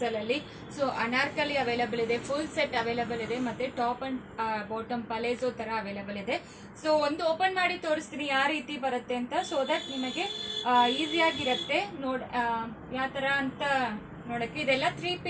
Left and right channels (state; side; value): identical; both; correlation 1.00